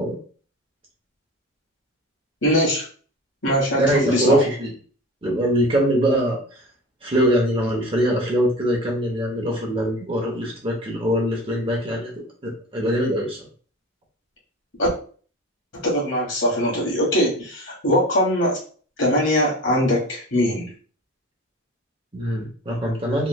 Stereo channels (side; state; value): both; normal; correlation 0.34